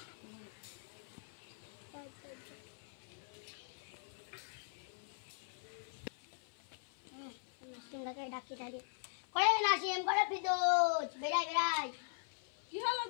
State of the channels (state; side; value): silent; right; 51 dB below the other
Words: ডাকি ডাকি করে নাসিম করে ফিদোজ বেড়াই বেড়াই। কি হলো